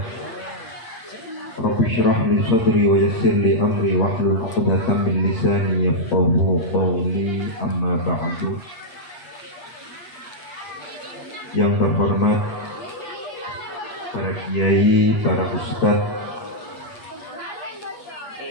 Rabbi syrah li sadri wa yassir li amri wahlul 'uqdatam min lisani yafqahu qawli, amma ba'du. Yang terhormat para kiai, para ustadz,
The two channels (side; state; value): right; late; 8.4 ms